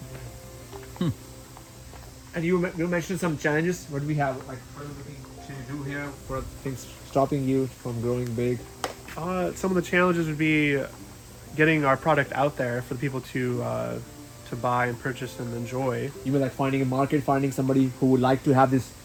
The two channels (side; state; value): both; identical; correlation 1.00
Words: And you mentioned some challenges. What do we have? Like, what are we looking to do here? What are things stopping you from growing big? Some of the challenges would be getting our product out there for the people to buy and purchase and enjoy. You mean like finding a market, finding somebody who would like to have this